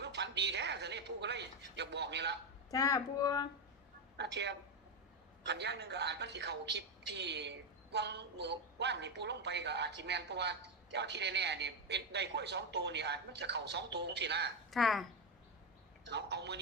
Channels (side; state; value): both; normal; correlation 0.09